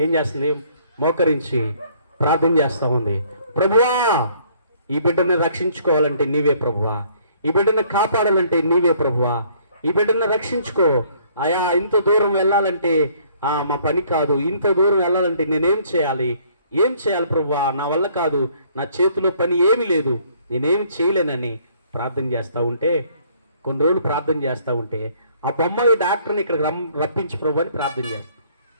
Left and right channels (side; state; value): both; inverted; correlation -0.61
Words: ఏం చేస్తుంది? మోకరించి ప్రార్థన చేస్తూ ఉంది. ప్రభువా, ఈ బిడ్డని రక్షించుకోవాలంటే నీవే ప్రభువా, ఈ బిడ్డని కాపాడాలంటే నీవే ప్రభువా, ఈ బిడ్డని రక్షించుకో అయా. ఇంత దూరం వెళ్ళాలంటే మా పని కాదు, ఇంత దూరం వెళ్ళాలంటే నేనేం చేయాలి? ఏం చేయాలి ప్రభువా? నా వల్ల కాదు, నా చేతిలో పని ఏమీ లేదు, నేనేమి చేయలేనని ప్రార్థన చేస్తూ ఉంటే, కొన్ని రోజులు ప్రార్థన చేస్తూ ఉంటే ఆ బొమ్మాయి డాక్టర్ని ఇక్కడికి రప్పించు ప్రభు అని ప్రార్థన చేస్తాం.